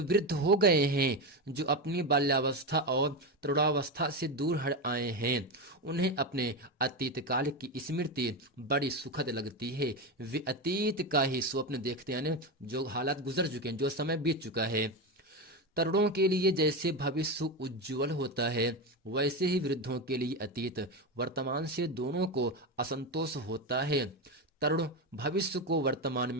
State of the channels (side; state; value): both; normal; correlation 0.16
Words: वृद्ध हो गए हैं, जो अपनी बाल्यावस्था और तरुणावस्था से दूर हट आए हैं, उन्हें अपने अतीत काल की स्मृति बड़ी सुखद लगती है। वे अतीत का ही स्वप्न देखते हैं, यानी जो हालात गुजर चुके हैं, जो समय बीत चुका है। तरुणों के लिए जैसे भविष्य उज्जवल होता है, वैसे ही वृद्धों के लिए अतीत वर्तमान से दोनों को असंतोष होता है। तरुण भविष्य को वर्तमान